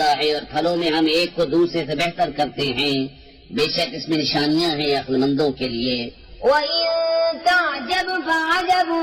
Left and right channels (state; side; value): identical; both; correlation 1.00